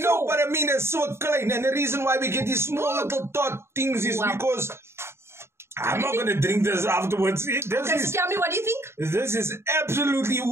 but I mean it's so klein. And the reason why we get these small little dot things is because I'm not going to drink this afterwards. So tell me, what do you think? This is absolutely,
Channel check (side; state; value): left; late; 0.12 ms